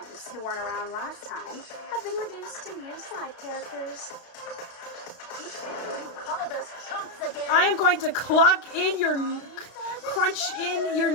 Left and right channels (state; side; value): late; right; 32 ms